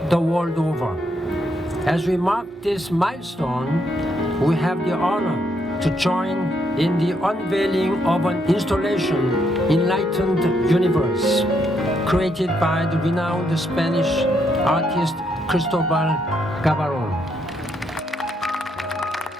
the world over. As we mark this milestone, we have the honor to join in the unveiling of an installation, Enlightened Universe, created by the renowned Spanish artist Cristobal Gavarron.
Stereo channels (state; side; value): normal; both; correlation 0.75